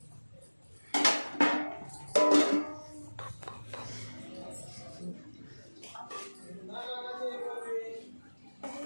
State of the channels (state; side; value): inverted; both; correlation -1.00